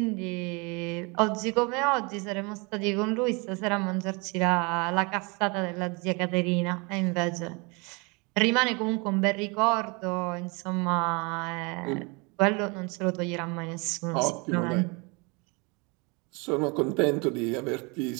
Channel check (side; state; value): left; quieter; 29.6 dB